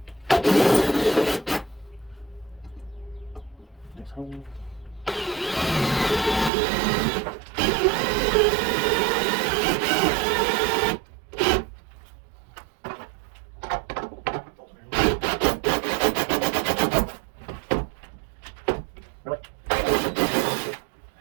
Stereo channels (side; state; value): left; drops out; at 6.5 s